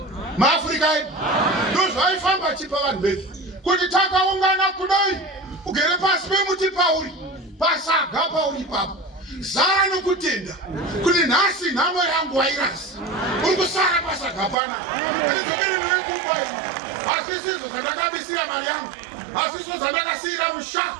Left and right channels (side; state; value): left; drops out; at 14.6 s